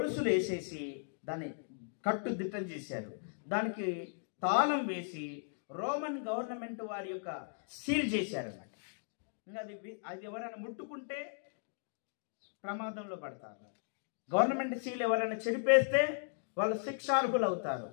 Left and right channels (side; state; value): right; silent; digital silence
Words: వేసేసి దాన్ని కట్టుదిట్టం చేశారు. దానికి తాళం వేసి రోమన్ గవర్నమెంట్ వారి యొక్క సీల్ చేశారన్నమాట. ఇంకా అది ఎవరైనా ముట్టుకుంటే ప్రమాదంలో పడతారు. గవర్నమెంట్ సీల్ ఎవరైనా చెడిపేస్తే వాళ్ళు శిక్షార్హులు అవుతారు,